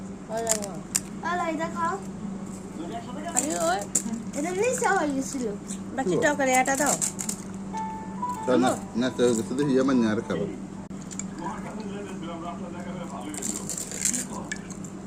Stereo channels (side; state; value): both; identical; correlation 1.00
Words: ভালো এটা খাও। এটা নিচে হয়ে গেছিল। বাকি তরকারি আটা দাও না না তো শুধু ইয়া মানে আর খাবো